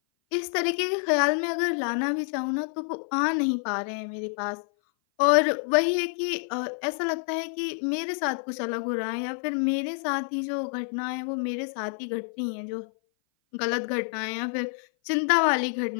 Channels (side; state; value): right; silent; 56 dB below the other